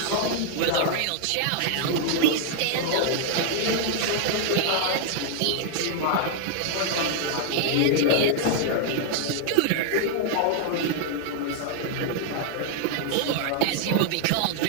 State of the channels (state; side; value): different; both; correlation 0.00